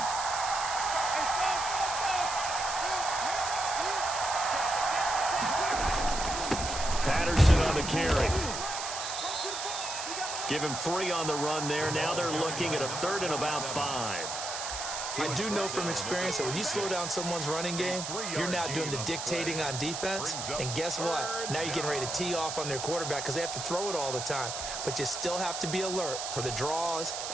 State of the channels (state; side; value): noise; right; hiss, 5 dB below the sound